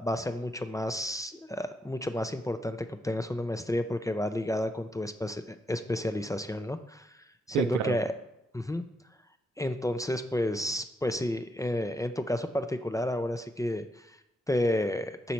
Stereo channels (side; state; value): both; normal; correlation 0.79